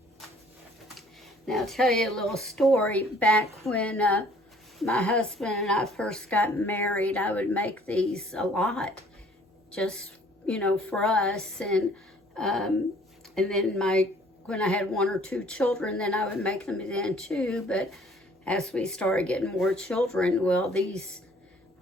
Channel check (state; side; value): normal; both; correlation 0.56